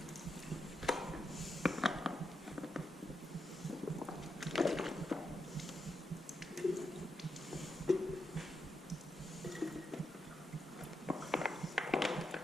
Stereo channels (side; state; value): both; normal; correlation 0.84